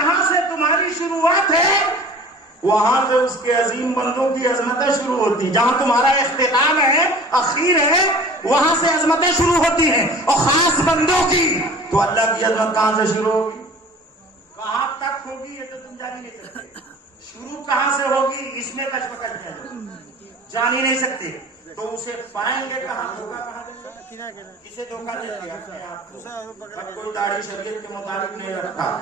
سے تمہاری شروعات ہے وہاں سے اس کے عظیم بندوں کی عظمتیں شروع ہوتی ہیں. جہاں تمہارا اختتام ہے, اخیر ہے, وہاں سے عظمتیں شروع ہوتی ہیں, اور خاص بندوں کی. تو اللہ کی عظمت کہاں سے شروع ہوگی, کہاں تک ہوگی, یہ تو تم جان ہی نہیں سکتے. شروع کہاں سے ہوگی اس میں کشمکش ہے, جان ہی نہیں سکتے. تو اسے پائیں گے کہاں, دھوکہ کہاں دیں گے, کسے دھوکہ دیتے اپنے آپ کو. کوئی داڑھی شریعت کے مطابق نہیں رکھتا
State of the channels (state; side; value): normal; both; correlation 0.44